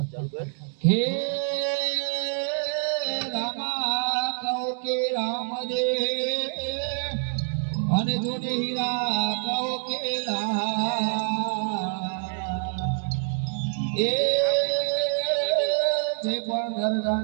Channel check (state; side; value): silent; left; digital silence